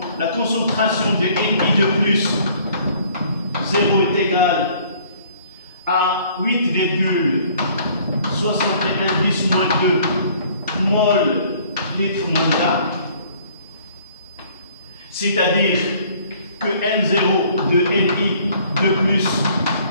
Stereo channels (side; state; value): both; inverted; correlation -0.57